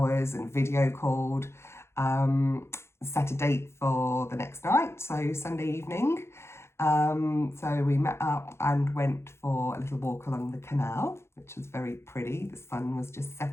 and video called, set a date for the next night, so Sunday evening. So we met up and went for a little walk along the canal, which was very pretty. The sun was just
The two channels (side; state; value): right; late; 0.13 ms